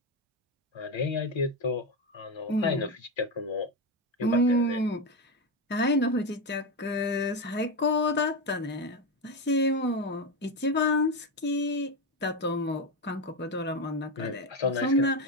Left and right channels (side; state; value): both; normal; correlation 0.13